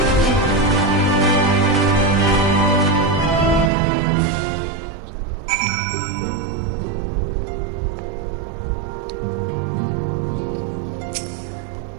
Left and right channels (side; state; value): left; drops out; at 3.7 s